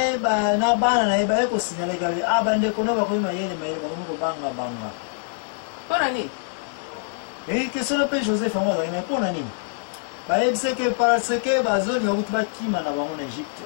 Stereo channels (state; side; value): silent; right; 63 dB below the other